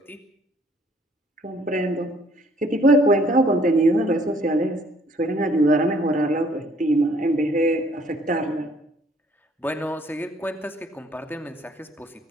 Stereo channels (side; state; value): both; normal; correlation 0.61